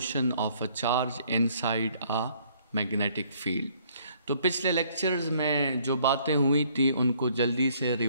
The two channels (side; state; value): both; inverted; correlation -0.63